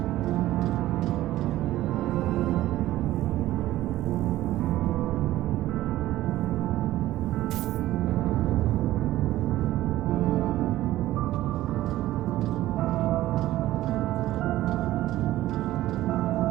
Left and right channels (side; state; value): left; quieter; 15.2 dB